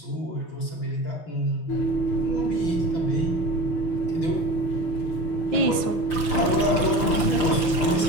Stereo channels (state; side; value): late; right; 5.9 ms